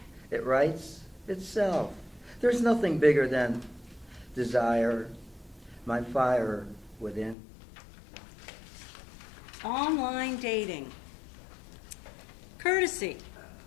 it writes itself. There's nothing bigger than desire, my fire within. Online dating. Courtesy.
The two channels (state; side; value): drops out; right; at 7.4 s